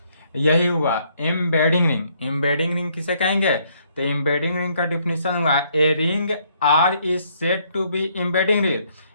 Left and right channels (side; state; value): both; inverted; correlation -0.69